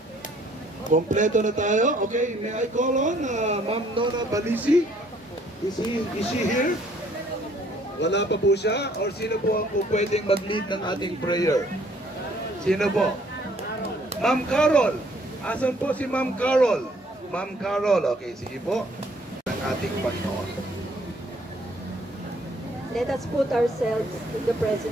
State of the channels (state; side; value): normal; both; correlation 0.62